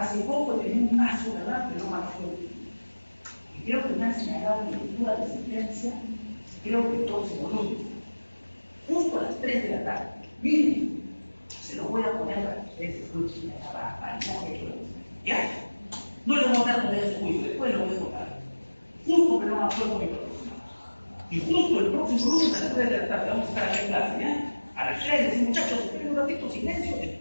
poco tenía un caso, ¿verdad? Que no me acuerdo. Y creo que me han señalado en lectura de sentencia, creo que el próximo lunes, justo a las 3 de la tarde. Miren, se lo voy a poner para que ustedes escuchen la barbaridad que he hecho. ¿Ya? No le voy a dar todavía su juicio, después lo voy a contar. Justo que no me acuerdo mi próximo. Y justo el próximo lunes a las 3 de la tarde vamos a estar aquí en clase, ¿ya? A las 3 decimos, muchachos, esperen un ratito, silencio,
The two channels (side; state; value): both; inverted; correlation -1.00